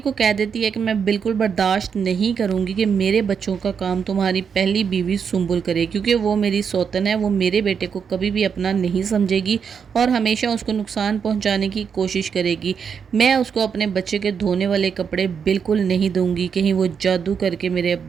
کو کہہ دیتی ہے کہ میں بالکل برداشت نہیں کروں گی کہ میرے بچوں کا کام تمہاری پہلی بیوی سنبل کرے، کیونکہ وہ میری سوتن ہے، وہ میرے بیٹے کو کبھی بھی اپنا نہیں سمجھے گی اور ہمیشہ اس کو نقصان پہنچانے کی کوشش کرے گی۔ میں اس کو اپنے بچے کے دھونے والے کپڑے بالکل نہیں دوں گی، کہیں وہ جادو کر کے میرے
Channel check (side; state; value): left; quieter; 6.7 dB